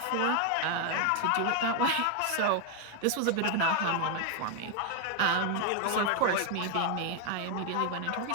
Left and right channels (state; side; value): different; both; correlation 0.01